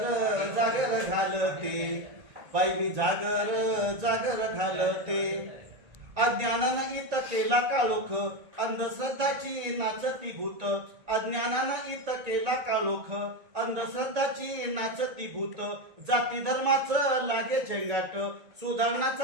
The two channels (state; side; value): late; left; 2.2 ms